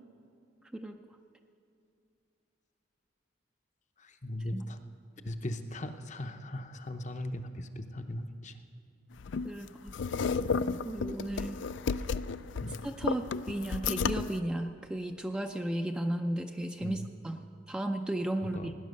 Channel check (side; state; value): both; normal; correlation 0.62